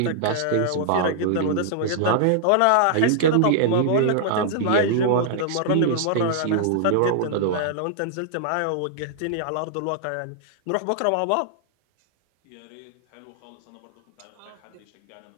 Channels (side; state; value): both; different; correlation -0.01